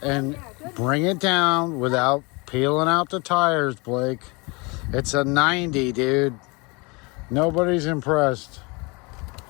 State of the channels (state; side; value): quieter; right; 28.2 dB